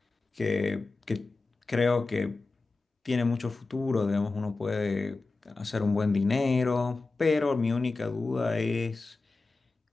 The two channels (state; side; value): quieter; right; 3.6 dB